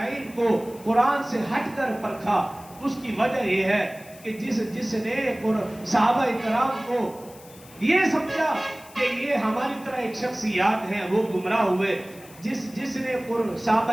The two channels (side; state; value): left; noise; hiss, 22 dB below the sound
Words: کو قرآن سے ہٹ کر پرکھا, اس کی وجہ یہ ہے کہ جس نے صحابہ اکرام کو یہ سمجھا کہ یہ ہماری طرح ایک شخصیات ہیں, وہ گمراہ ہوئے. جس نے صحابہ